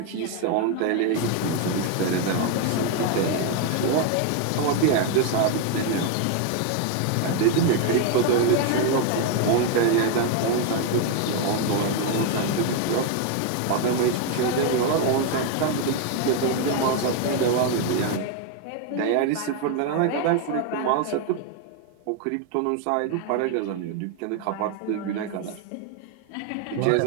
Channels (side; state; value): both; different; correlation 0.01